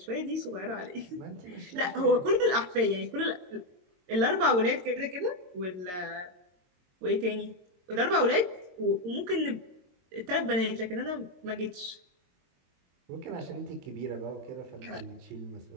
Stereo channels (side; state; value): left; late; 22 ms